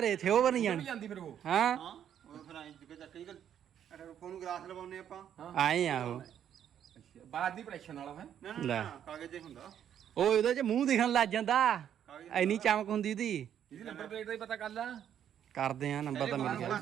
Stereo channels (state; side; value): quieter; left; 9.6 dB